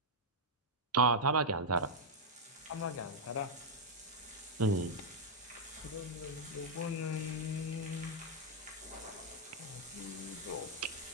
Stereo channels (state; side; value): normal; both; correlation -0.04